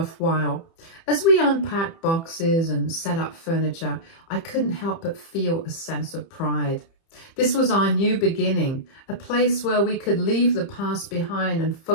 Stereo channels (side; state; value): right; late; 30 ms